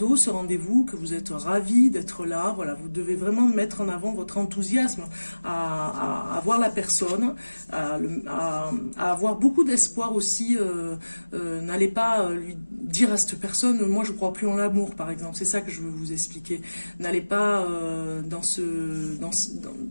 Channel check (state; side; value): inverted; both; correlation -1.00